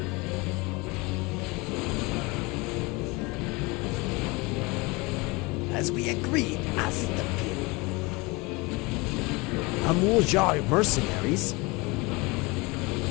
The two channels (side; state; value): right; quieter; 25.4 dB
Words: As we agreed, asked the pin. Mamul Jah mercenaries?